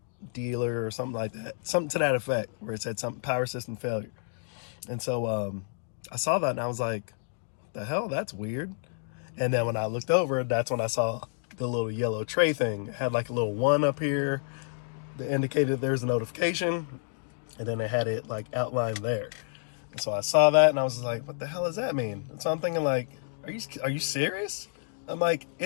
dealer or something like that, something to that effect, where it said something power system failure. And so I saw that and I was like, the hell, that's weird. And then when I looked over, that's when I saw the little yellow tray thing. It had like a little 1 up here that indicated there's a notification, and then it had it like outlined there. And so I saw that and I was like, what the hell does that mean? And so I'm thinking like, are you serious? I'm like,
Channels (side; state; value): right; silent; digital silence